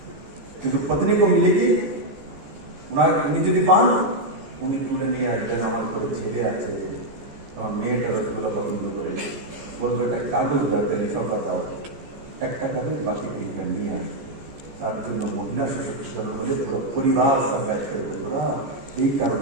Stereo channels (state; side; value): late; left; 14 ms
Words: কিন্তু पत्नी को मिलेगी উনি যদি পান উনি তুলে নিয়ে আসবেন, আমার কোনো ছেলে আছে, আমার মেয়েটা রসগোল্লা পছন্দ করে, বলবে একটা কাগজ দাও, লিফাফা দাও, 1 টাকা দিয়ে বাকি 3টা নিয়ে আসবে। তার জন্য মহিলা সশক্তিকরণ হলে পরিবার সব ব্যাচ করে দেবো। এই